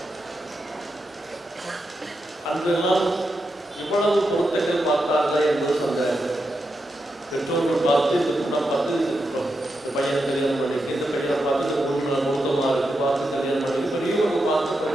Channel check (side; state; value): both; normal; correlation 0.86